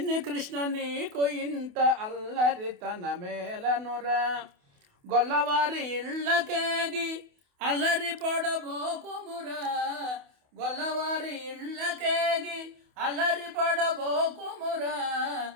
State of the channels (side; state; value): left; late; 28 ms